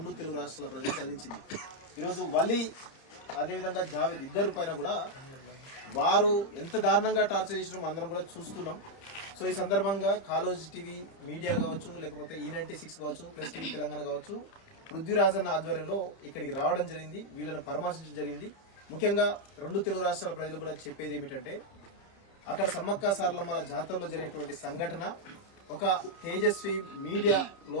తెలుగు రాష్ట్రాల ప్రజలు కలిగించింది. ఈరోజు వలీ అదేవిధంగా జావీద్ ఇద్దరు పైన కూడా వారు ఎంత దారుణంగా టార్చర్ చేసినామో అందరం కూడా చూస్తున్నాం. సో ఈ సందర్భంగా కాలేజ్ టీవీ మీడియా కావచ్చు, లేకపోతే E96 కావచ్చు, ప్లస్ టీవీ తెలంగాణ కావచ్చు, పృథ్వీరాజన్న ఆధ్వర్యంలో ఇక్కడికి రావడం జరిగింది, వీళ్ళని పరామర్శించడం జరిగింది. ముఖ్యంగా రెండు తెలుగు రాష్ట్రాల ప్రజలు కూడా చెప్పేది ఏమిటంటే, అక్కడ సమ్మక్క సారలమ్మల జాతరలో జరిగినటువంటి సంఘటన ఒక తేజస్వి మీడియాలో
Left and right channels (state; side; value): late; right; 30 ms